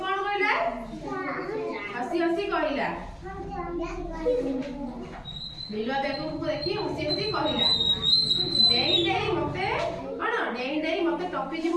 କଣ କହିଲା? ହସି ହସି କହିଲା। ବିଲୁଆ ବେଙ୍ଗକୁ ଦେଖି ହସି ହସି କହିଲା, ଡେଇଁ ଡେଇଁ ମତେ କଣ? ଡେଇଁ ଡେଇଁ ମତେ ଟପି ଯିବୁ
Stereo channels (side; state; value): both; identical; correlation 1.00